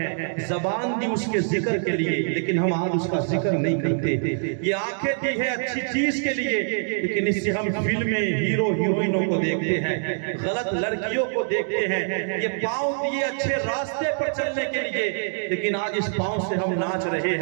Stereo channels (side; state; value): left; silent; digital silence